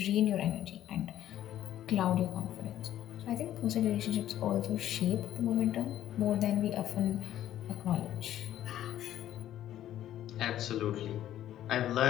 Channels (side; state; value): right; quieter; 12.2 dB